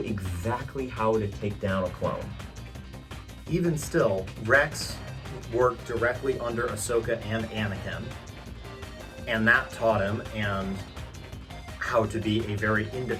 exactly how to take down a clone. Even still, Rex worked directly under Ahsoka and Anakin, and that taught him and how to be a very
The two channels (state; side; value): identical; both; correlation 1.00